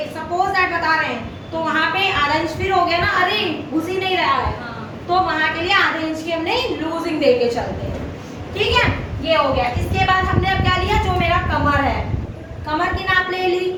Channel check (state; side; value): identical; both; correlation 1.00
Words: सपोज दैट बता रहे हैं, तो वहाँ पे आधा इंच फिर हो गया ना, अरे घुस ही नहीं रहा है, तो वहाँ के लिए आधे इंच की हमने लूजिंग दे के चलते हैं, ठीक है। ये हो गया। इसके बाद हमने अब क्या लिया, जो मेरा कमर है, कमर की नाप ले ली।